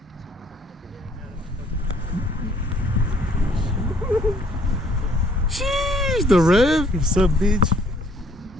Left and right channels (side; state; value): both; normal; correlation 0.62